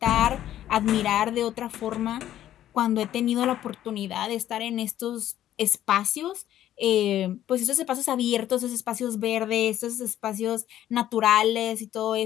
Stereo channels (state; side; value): quieter; right; 12.2 dB